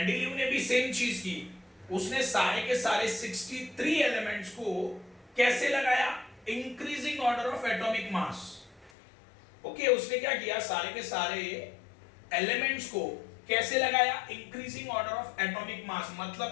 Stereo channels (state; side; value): drops out; right; at 8.9 s